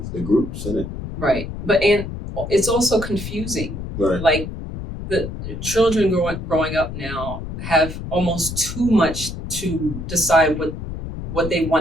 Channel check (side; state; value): left; noise; rumble, 8 dB below the sound